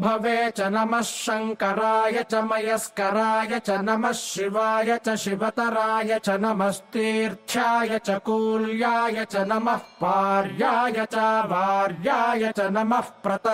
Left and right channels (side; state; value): both; identical; correlation 1.00